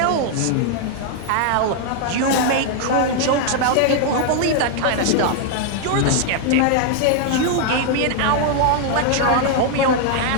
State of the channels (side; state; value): both; different; correlation 0.00